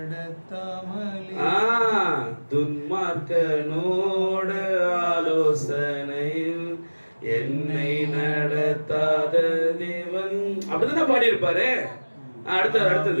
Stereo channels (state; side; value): inverted; both; correlation -1.00